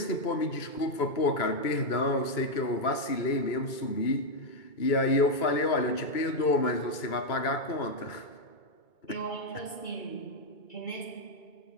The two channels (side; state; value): right; late; 2.2 ms